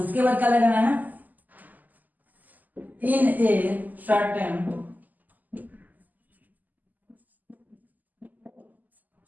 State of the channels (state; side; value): late; left; 0.083 ms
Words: बाद क्या लगाना है, इन ए सर्टेन,